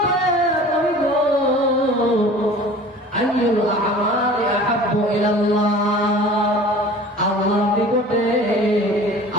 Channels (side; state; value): both; normal; correlation 0.43